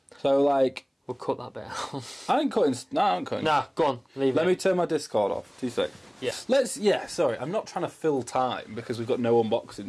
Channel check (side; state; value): both; identical; correlation 1.00